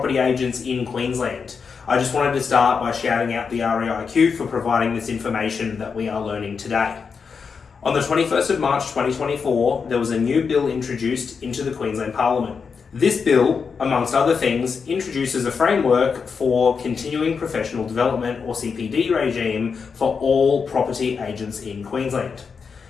agents in Queensland. I just wanted to start by shouting out the REIQ for providing this information that we are learning today. On the 21st of March 2024, there was a new bill introduced into the Queensland Parliament. This bill, amongst other things, introduces a framework for continuing professional development, or CPD regime, for all property agents in Queensland.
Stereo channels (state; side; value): quieter; right; 5.7 dB